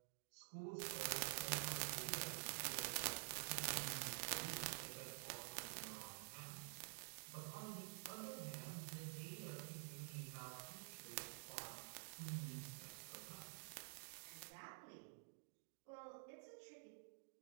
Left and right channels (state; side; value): silent; left; digital silence